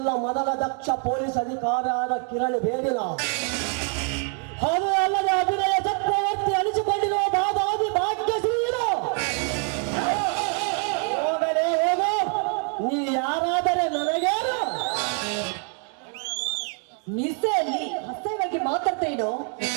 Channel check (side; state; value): left; quieter; 38.2 dB